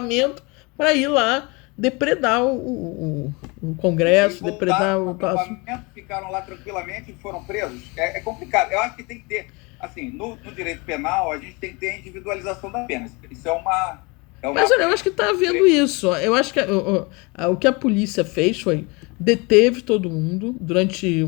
para ir lá depredar o Congresso, depredar o palácio. Ficaram lá tranquilamente e foram presos. É complicado. Eu acho que tem que ter, assim, no direito penal, a gente tem que ter a individualização da pena. Isso é uma... Mas olha, eu acho que está havendo isso. Eu acho que o que a polícia fez foi deteve todo mundo durante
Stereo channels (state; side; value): quieter; right; 27.7 dB